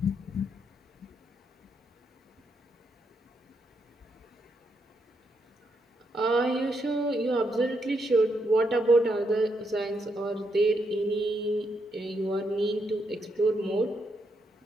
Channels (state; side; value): normal; both; correlation 0.79